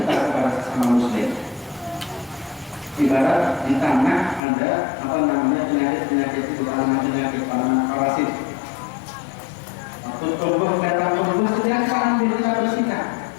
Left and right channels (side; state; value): right; drops out; at 4.4 s